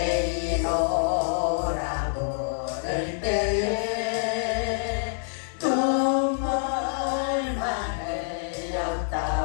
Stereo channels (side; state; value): right; silent; digital silence